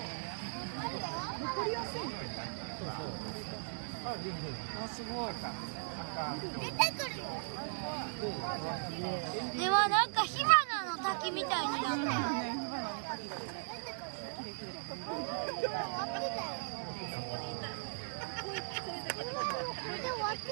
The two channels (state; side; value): silent; left; digital silence